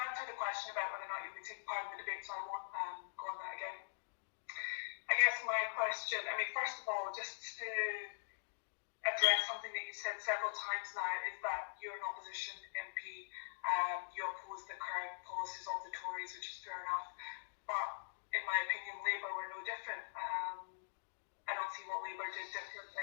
the question about whether or not you'll be taking part in the debate, so I won't go on that again. I guess my question, first of all, just to address something that you said several times now, is that you're an opposition MP. You oppose the current policies of the Tories, which is fair enough. But in my opinion, Labour were no different. I don't see what Labour did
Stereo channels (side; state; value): right; silent; digital silence